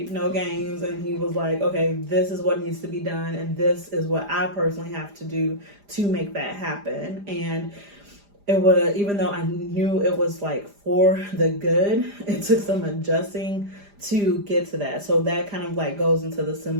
no games, and he was like, okay, this is what needs to be done, and this is what I personally have to do to make that happen. And it was, even though I knew it was like for the good, it took some adjusting to get to that. So that kind of like goes into the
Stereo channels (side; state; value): left; late; 5.0 ms